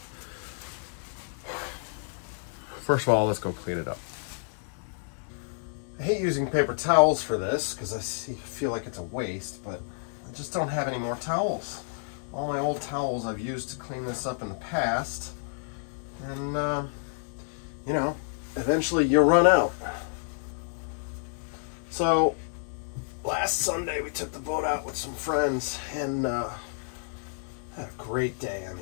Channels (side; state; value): right; silent; digital silence